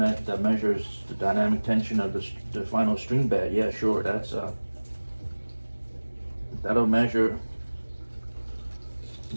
that measures the dynamic tension of the final string bed. Yeah, sure, that'll measure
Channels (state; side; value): inverted; both; correlation -1.00